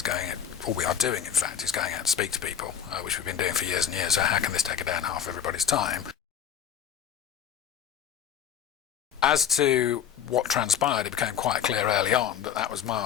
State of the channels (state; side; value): quieter; right; 9.0 dB